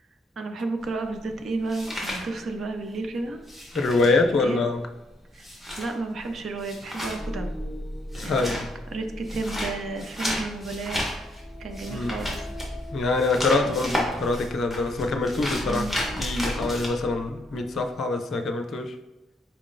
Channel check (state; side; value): normal; both; correlation 0.72